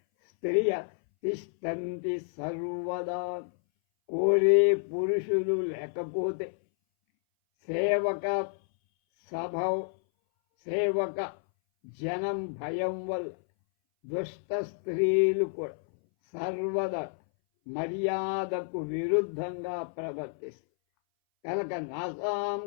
స్త్రియ తిష్టంతి సర్వదా. కోరే పురుషులు లేకపోతే సేవక జనం భయం వల్ల దుష్ట స్త్రీలు కూడా సర్వదా మర్యాదకు విరుద్ధంగా ప్రవర్తిస్తారు. కనుక నాసాం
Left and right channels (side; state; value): right; silent; 58 dB below the other